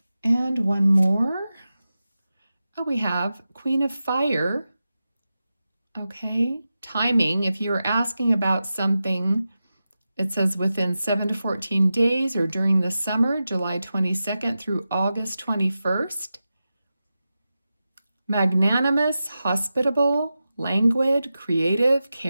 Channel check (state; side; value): inverted; both; correlation -0.92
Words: And one more. Oh, we have Queen of Fire. Okay, timing. If you were asking about something, it says within 7 to 14 days or during the summer, July 22nd through August 21st. Magnanimous, hospitable, languid, creative,